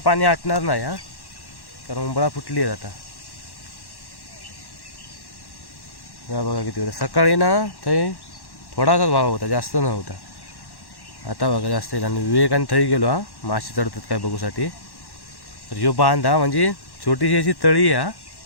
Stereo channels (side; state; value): right; late; 1.1 ms